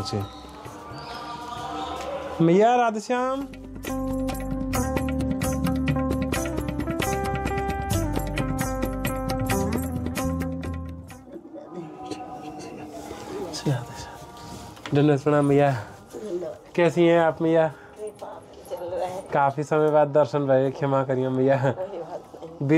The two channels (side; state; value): both; identical; correlation 1.00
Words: मैया राधेश्याम, धन्यवाद प्रणाम मैया। कैसी हैं आप मैया? काफी समय बाद दर्शन भये, क्षमा करिए मैया।